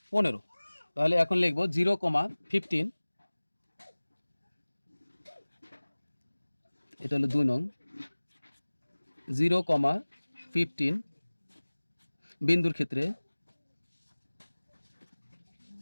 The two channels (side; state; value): both; inverted; correlation -1.00